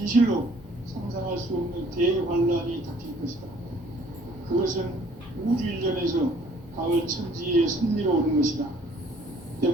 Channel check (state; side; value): normal; both; correlation 0.58